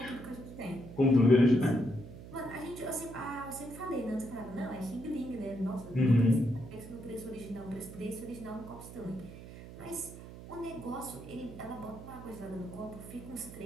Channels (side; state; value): right; noise; hum, 14 dB below the sound